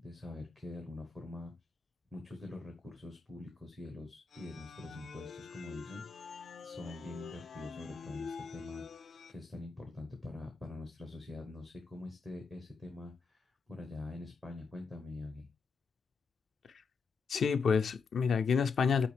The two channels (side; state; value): right; quieter; 5.1 dB